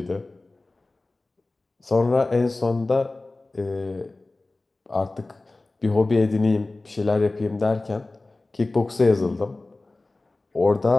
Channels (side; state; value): right; quieter; 3.1 dB